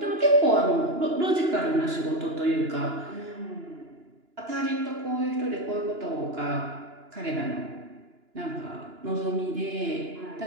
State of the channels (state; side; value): late; left; 2.9 ms